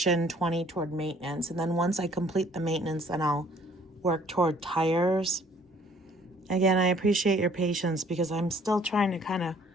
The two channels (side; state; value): both; normal; correlation 0.58